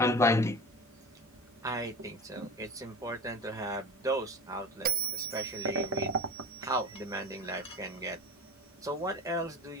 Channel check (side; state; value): both; normal; correlation 0.34